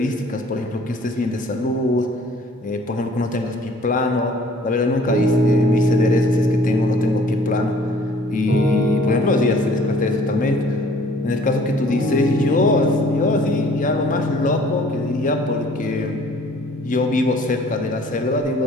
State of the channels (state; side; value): normal; both; correlation 0.55